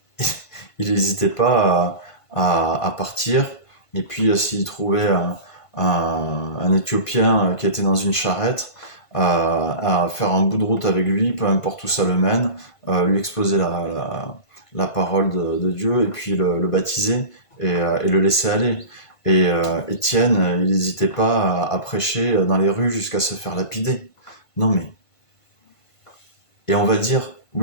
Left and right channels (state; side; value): late; right; 1.5 ms